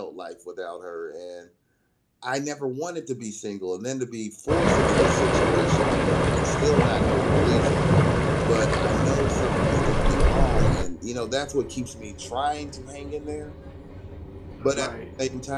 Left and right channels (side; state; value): both; identical; correlation 1.00